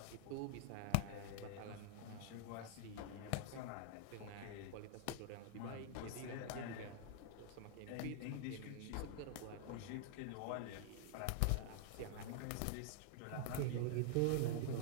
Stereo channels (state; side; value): different; both; correlation -0.01